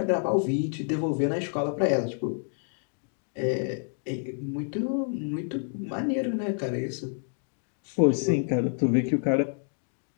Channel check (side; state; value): right; silent; 59 dB below the other